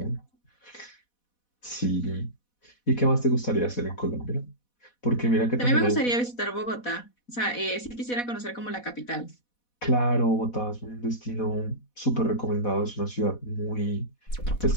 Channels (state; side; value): late; right; 4.1 ms